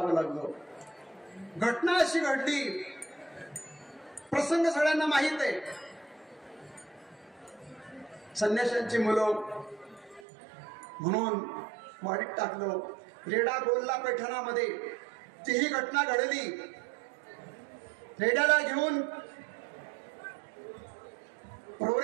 लागलं? घटना अशी घडली, प्रसंग सगळ्यांना माहित आहे. संन्याशांची मुलं म्हणून वाडीत टाकलं. रेडा बोलला पैठणामध्ये तीही घटना घडली. रेड्याला घेऊन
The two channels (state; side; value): drops out; left; at 10.2 s